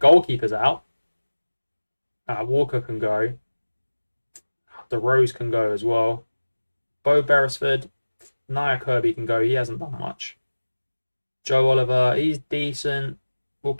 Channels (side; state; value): both; inverted; correlation -1.00